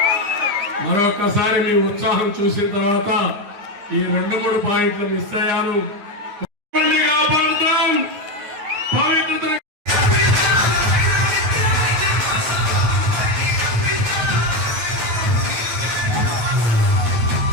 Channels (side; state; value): left; late; 9.2 ms